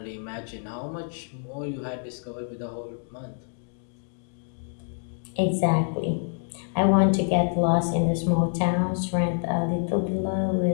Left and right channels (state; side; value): silent; right; 60 dB below the other